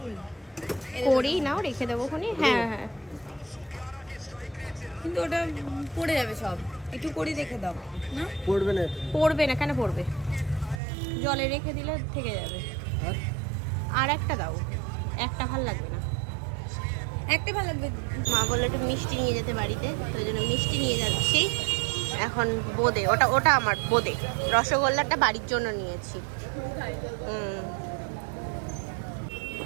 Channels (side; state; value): left; drops out; at 10.8 s